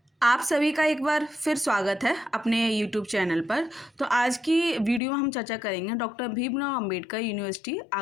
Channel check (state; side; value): drops out; right; at 5.0 s